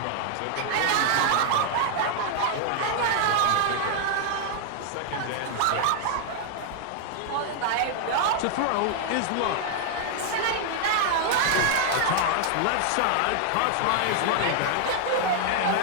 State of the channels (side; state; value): both; different; correlation 0.00